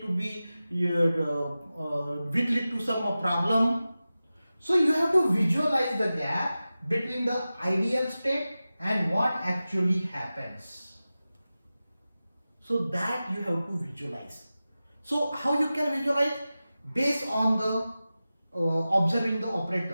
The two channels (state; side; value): inverted; both; correlation -0.95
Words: to be which lead to some problem. So you have to visualize the gap between the ideal state and what actually happens. So that you have to visualize. So how you can visualize? Based on the observing the